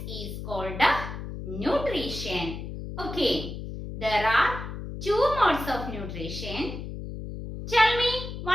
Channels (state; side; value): noise; left; hum, 8 dB below the sound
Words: is called nutrition. Okay, there are two modes of nutrition. Tell me,